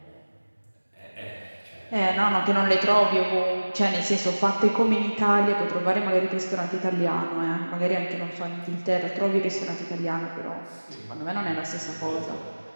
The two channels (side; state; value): both; inverted; correlation -1.00